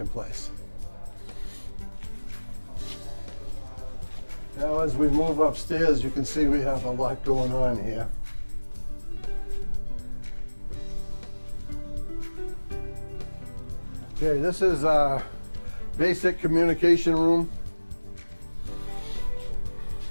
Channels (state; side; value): inverted; both; correlation -1.00